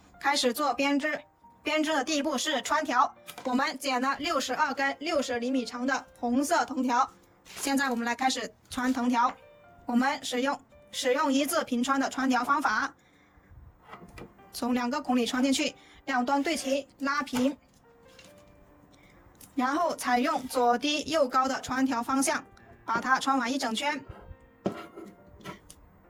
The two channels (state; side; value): identical; both; correlation 1.00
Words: 开始做编织。编织的第一步是穿条，我们剪了62根60厘米长的红色藤条。现在我们来开始穿藤条。我们使用一字平穿的穿条方法，从2个孔里穿进去，两端对齐拉平，然后采用左低右高的穿条方向把它穿完一整圈。